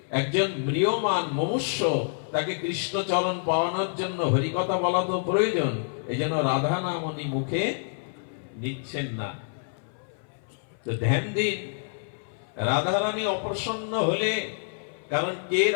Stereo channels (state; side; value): silent; right; 60 dB below the other